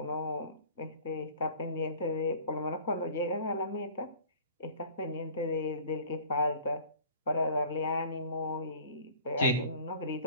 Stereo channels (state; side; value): inverted; both; correlation -0.47